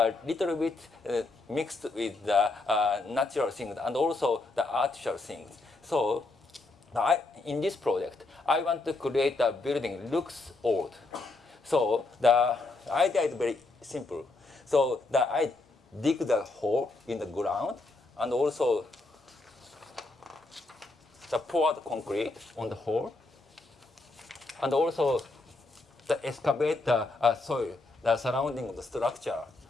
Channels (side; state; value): right; quieter; 3.2 dB